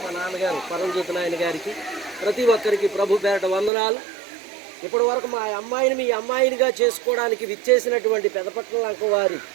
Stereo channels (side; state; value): left; drops out; at 3.7 s